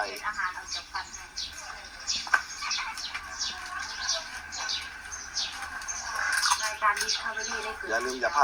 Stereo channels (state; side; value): identical; both; correlation 1.00